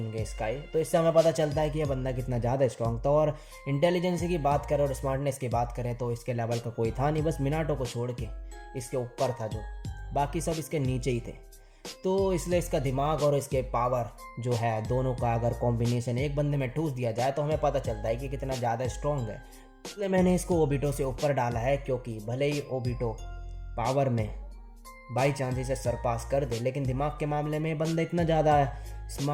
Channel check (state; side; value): identical; both; correlation 1.00